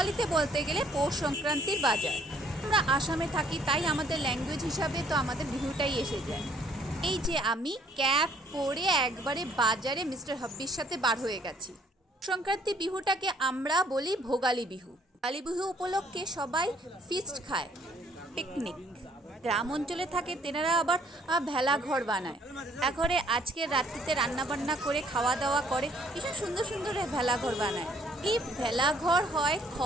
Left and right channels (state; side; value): normal; both; correlation 0.63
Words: বলতে গেলে পৌষ সংক্রান্তির বাজার। আমরা আসামে থাকি, তাই আমাদের ল্যাঙ্গুয়েজ হিসাবে তো আমাদের বিহুটাই এসে যায়। এই যে আমি ক্যাপ পরে একবারে বাজারে মিস্টার হাব্বির সাথে বার হয়ে গেছি। সংক্রান্তি বিহুটাকে আমরা বলি ভোগালী বিহু। ভোগালী বিহু উপলক্ষে সবাই ফিস্ট খায়, পিকনিক। গ্রাম অঞ্চলে থাকে তেনারা আবার ভেলা ঘর বানায়। ঘরে আজকে রাত্রিতে রান্না বান্না করে খাওয়া দাওয়া করে, ভীষণ সুন্দর সুন্দর ভেলা ঘর বানায়। এই ভেলা ঘর হয়